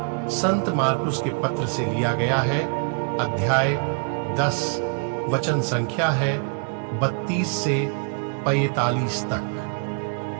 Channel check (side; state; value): left; quieter; 38.7 dB